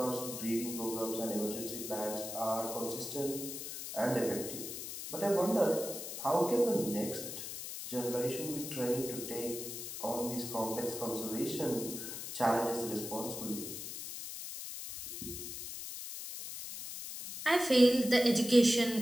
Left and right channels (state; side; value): noise; left; hiss, 8 dB below the sound